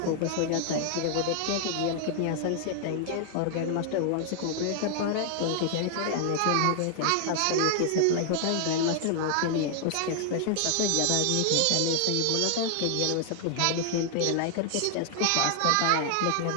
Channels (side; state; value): both; different; correlation 0.00